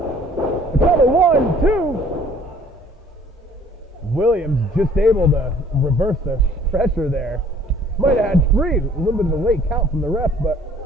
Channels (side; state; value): both; normal; correlation 0.55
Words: Cover 1, 2. Williams just able to reverse the pressure there. Might have had 3. A little bit of a late count from the ref, but